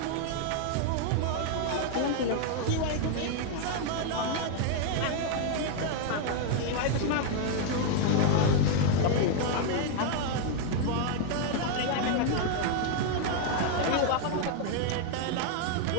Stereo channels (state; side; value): different; both; correlation 0.00